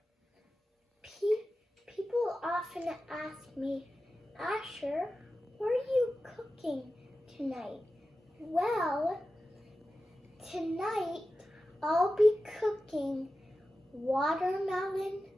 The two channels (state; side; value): normal; both; correlation 0.94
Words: People often ask me, Asher, what are you cooking tonight? Well, tonight I'll be cooking watermelon